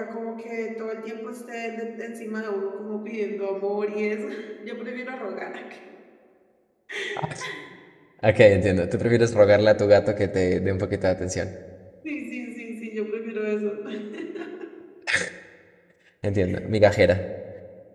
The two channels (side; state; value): both; identical; correlation 1.00